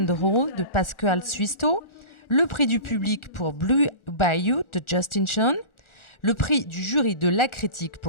de Pascal Suisto, le prix du public pour Blue Bayou de Justin Sean, le prix du jury de la critique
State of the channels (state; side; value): late; right; 1.4 ms